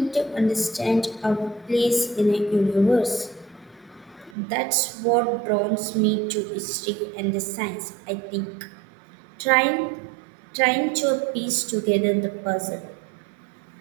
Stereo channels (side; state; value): left; drops out; at 4.4 s